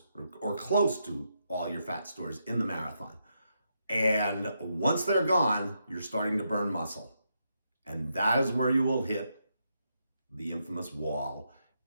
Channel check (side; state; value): both; inverted; correlation -0.81